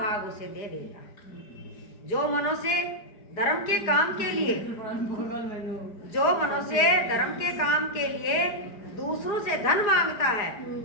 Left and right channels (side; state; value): right; late; 5.0 ms